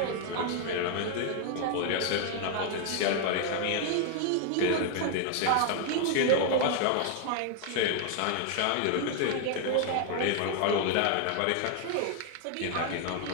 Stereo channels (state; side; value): different; both; correlation 0.00